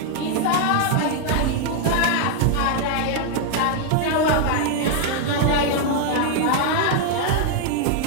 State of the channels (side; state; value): both; different; correlation 0.00